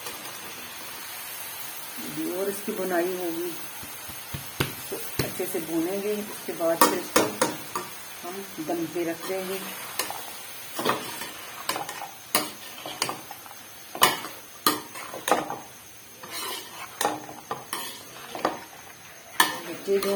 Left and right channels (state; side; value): identical; both; correlation 1.00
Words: और इसकी बुनाई होगी तो अच्छे से भूनेंगे। उसके बाद फिर इसको हम दम पे रख देंगे। बच्चे जो